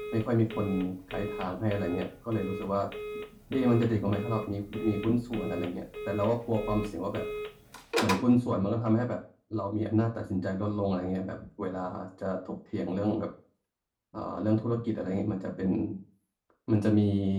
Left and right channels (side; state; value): both; identical; correlation 1.00